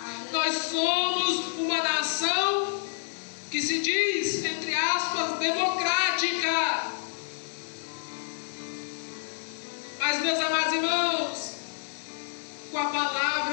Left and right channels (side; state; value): right; silent; 58 dB below the other